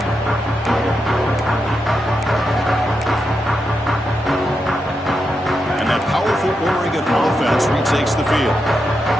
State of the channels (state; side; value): normal; both; correlation 0.85